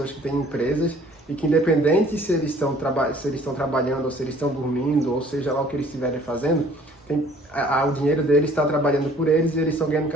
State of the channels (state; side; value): normal; both; correlation 0.55